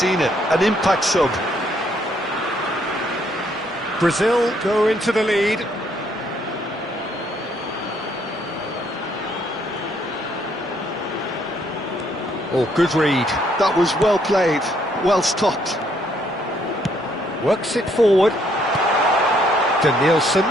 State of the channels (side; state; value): both; normal; correlation 0.69